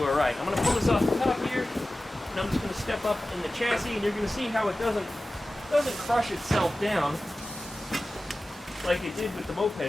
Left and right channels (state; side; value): normal; both; correlation 0.96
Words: all right. I'm going to pull this off the top here, and I'm just going to step up in the chassis, and you're going to see how it doesn't crush itself down like it did with the